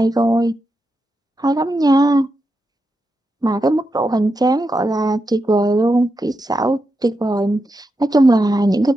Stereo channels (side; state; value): both; normal; correlation 0.86